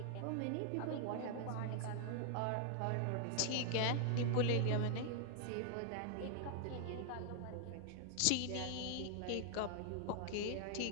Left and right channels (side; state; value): both; different; correlation 0.00